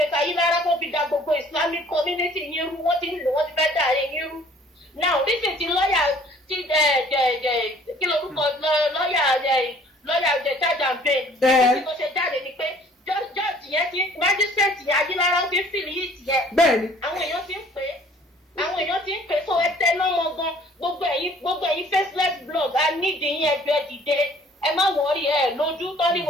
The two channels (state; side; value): normal; both; correlation 0.55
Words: Ayílára tó fi da gbogbo islamic community yín rú wọ́n ti fẹ́ dà yín rú now this is ti lọ́ọ̀yà kí lorúkọ lọ́ọ̀yà lọ́yà ọ̀jẹ̀ charge and bail tí kò ṣe jáde ni pé judge yẹn ti magistrate yẹn Ajílára ti ń fìlì yìí tiẹ̀ àwọn èèyàn ti ń pè so ẹ tẹ lọ́mọ gan gbogbo ẹ̀yin faceless blog a nídìí yín ẹgbẹ́ dìde ẹ má wọrí ẹ lójú